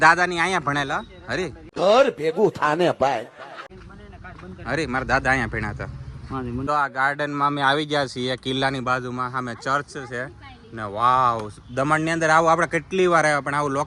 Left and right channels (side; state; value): both; identical; correlation 1.00